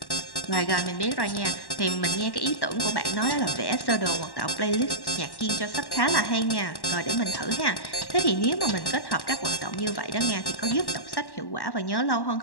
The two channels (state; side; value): late; right; 1.1 ms